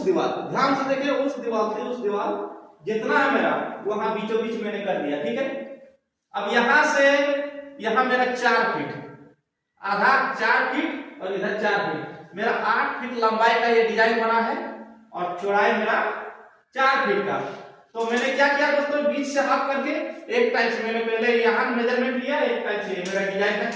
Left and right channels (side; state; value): both; identical; correlation 1.00